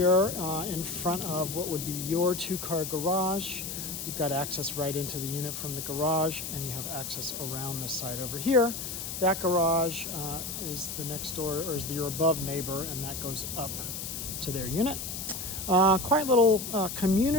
in front of what would be your two-car garage. You've got access right into the unit from the garage, and you have access around this side over here. That garage is the next door, or is your above neighbor, and that goes up to their unit. Quiet little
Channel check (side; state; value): left; noise; hiss, 6 dB below the sound